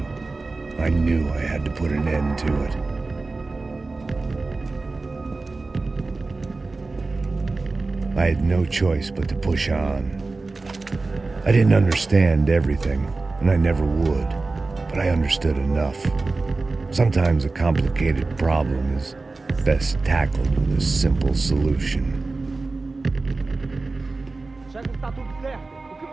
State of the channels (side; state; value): left; quieter; 3.6 dB